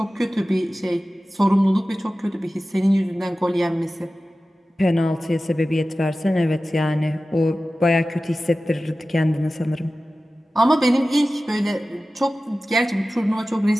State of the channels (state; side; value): normal; both; correlation 0.96